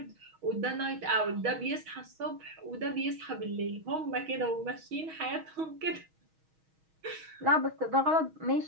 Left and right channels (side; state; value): left; late; 6.3 ms